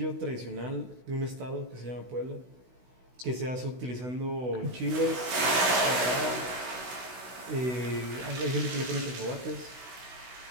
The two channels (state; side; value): late; left; 16 ms